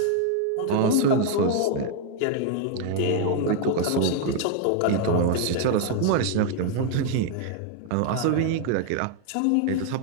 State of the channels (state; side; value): different; both; correlation 0.00